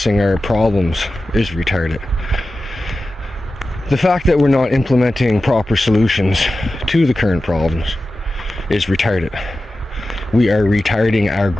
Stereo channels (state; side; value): normal; both; correlation 0.94